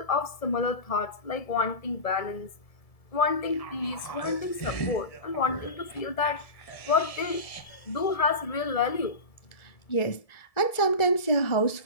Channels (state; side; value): late; right; 1.7 ms